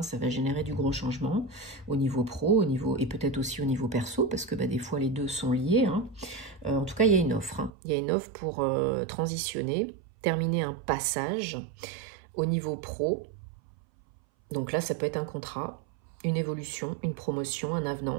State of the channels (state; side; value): drops out; left; at 7.7 s